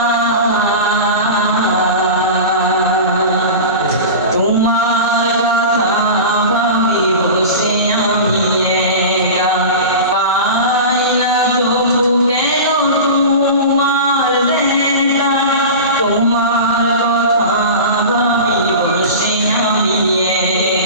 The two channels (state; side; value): inverted; both; correlation -0.30